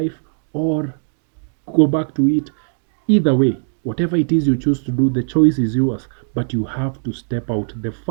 or go back to it. Either way, whatever it is you choose to do, the choice is yours, but you have to step out. The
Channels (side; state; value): left; silent; digital silence